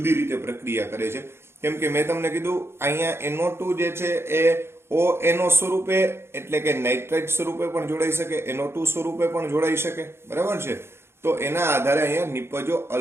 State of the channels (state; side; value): late; left; 0.12 ms